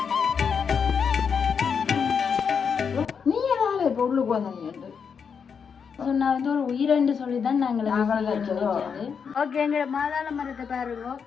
நீ ஏதாவது இப்ப உள்ளுக்கு வந்தீங்க நான் ஒரு உயிரென்று சொல்லிதான் நாங்கள் ஓகே. எங்களோட மாதாள மரத்தை பாருங்க,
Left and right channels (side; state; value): right; quieter; 6.5 dB